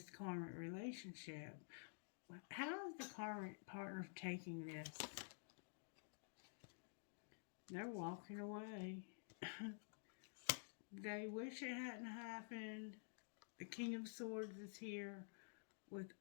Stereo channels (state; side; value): silent; right; digital silence